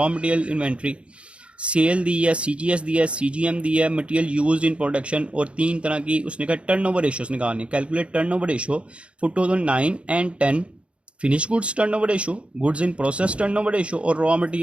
मटेरियल इन्वेंट्री, सेल दी है, CGS दी है, CGM दी है, मटेरियल यूज्ड इन प्रोडक्शन, और 3 तरह की उसने कहा टर्नओवर रेशियोज निकालनी है। Calculate turnover ratio for 2009 and 10, finish goods turnover ratio, goods in process turnover ratio और रॉ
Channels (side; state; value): left; late; 0.059 ms